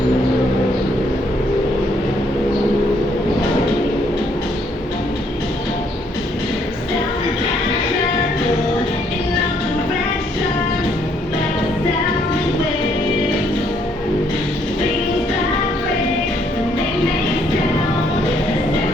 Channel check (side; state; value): both; normal; correlation 0.69